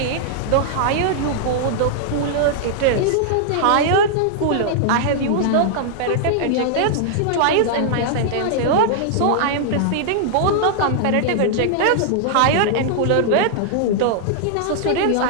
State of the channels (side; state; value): both; different; correlation -0.01